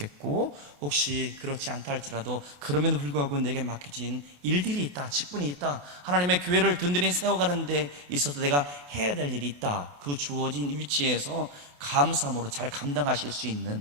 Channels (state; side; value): late; left; 28 ms